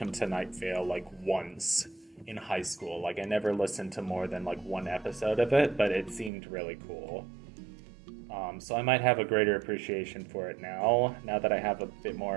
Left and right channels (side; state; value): left; drops out; at 6.3 s